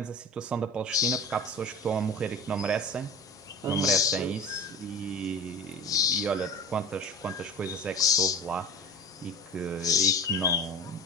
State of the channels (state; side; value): normal; both; correlation 0.35